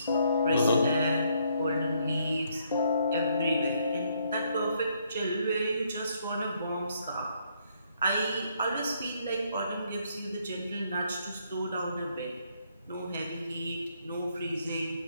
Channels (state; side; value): inverted; both; correlation -0.71